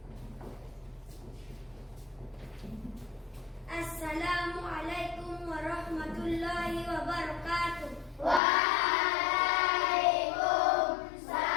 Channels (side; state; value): right; drops out; at 8.4 s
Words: Assalamualaikum warahmatullahi wabarakatuh.